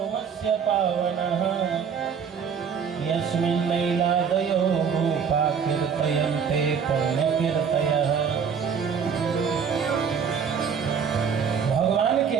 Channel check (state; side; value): quieter; left; 6.7 dB